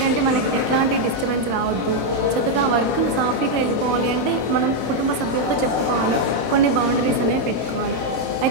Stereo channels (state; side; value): late; left; 25 ms